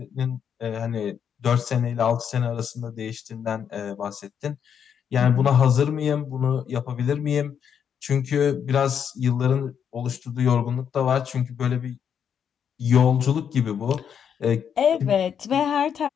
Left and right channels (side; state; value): right; quieter; 8.0 dB